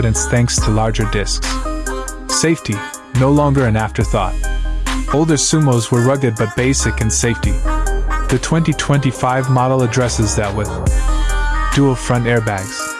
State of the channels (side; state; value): both; identical; correlation 1.00